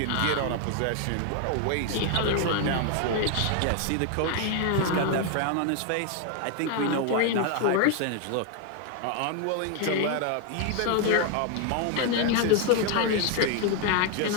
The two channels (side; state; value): both; different; correlation 0.01